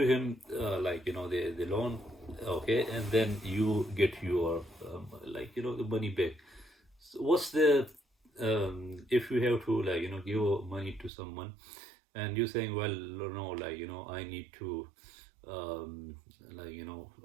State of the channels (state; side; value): drops out; left; at 11.1 s